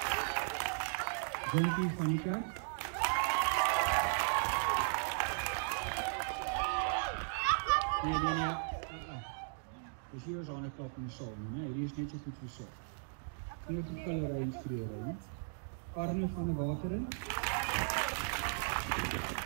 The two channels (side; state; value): left; silent; digital silence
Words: Jonathan van die Kerk. Nee. Dus hier is aan klap in die saal, nee, hier is net so goed versorg. Hier het die killery instruere. Arno van die Wateren.